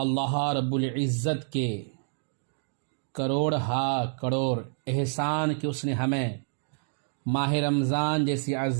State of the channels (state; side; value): silent; left; digital silence